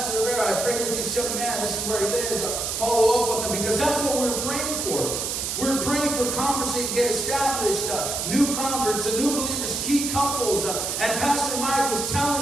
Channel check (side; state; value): right; noise; hiss, 2 dB below the sound